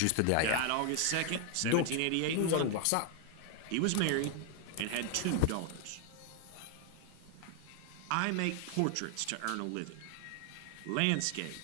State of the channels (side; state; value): both; different; correlation 0.00